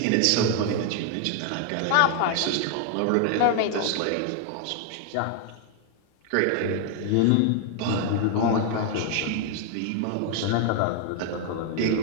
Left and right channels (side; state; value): both; different; correlation 0.00